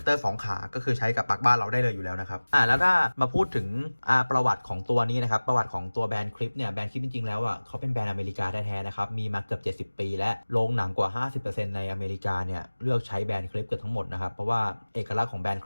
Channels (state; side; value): inverted; both; correlation -1.00